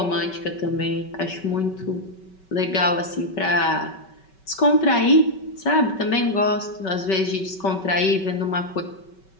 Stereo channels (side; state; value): right; late; 5.2 ms